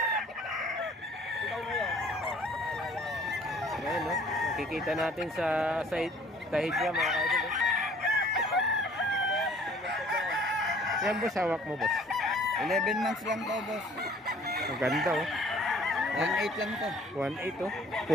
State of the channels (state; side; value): normal; both; correlation 0.54